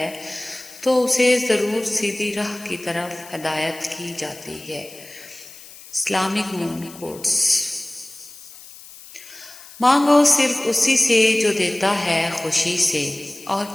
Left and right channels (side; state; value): left; noise; hiss, 18 dB below the sound